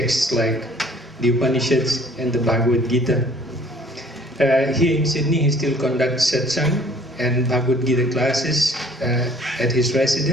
like the Upanishads and the Bhagavad Gita. Here in Sydney he still conducts satsang and Bhagavad Gita classes at his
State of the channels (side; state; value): both; normal; correlation 0.55